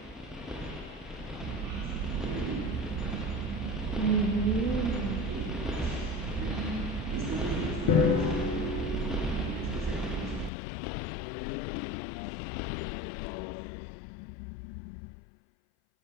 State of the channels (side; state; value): right; drops out; at 10.5 s